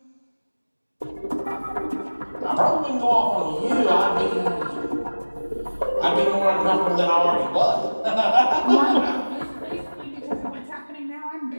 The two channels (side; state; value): both; inverted; correlation -1.00